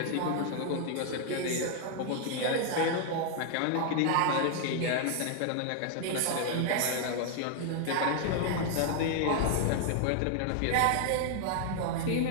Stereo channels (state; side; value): different; both; correlation 0.00